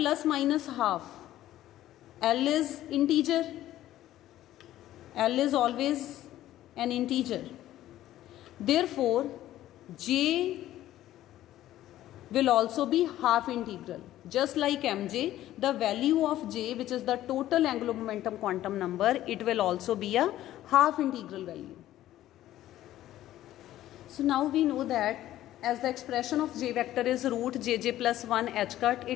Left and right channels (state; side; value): quieter; right; 13.7 dB